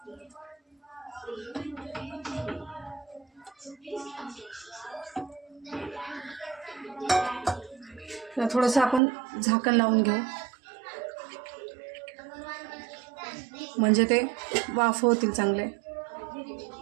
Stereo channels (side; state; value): left; drops out; at 9.0 s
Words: तर थोडंसं आपण झाकण लावून घेऊ, म्हणजे ते वाफ होतील चांगले.